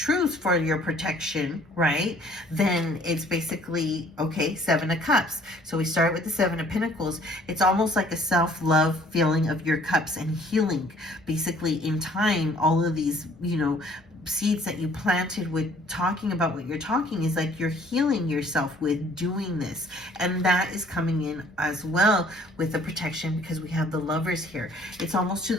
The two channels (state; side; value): normal; both; correlation 0.57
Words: for your protection, right, then it's basically, okay, Seven of Cups. So we start with the Seven of Pentacles. It's almost like a self-love feeling of your cups and healing. Basically, in time, all of these, you know, seeds that you planted with talking about what you're talking is like you're healing yourself with doing this. And that is coming in as well with the protection, because we have the Lovers here. It's almost to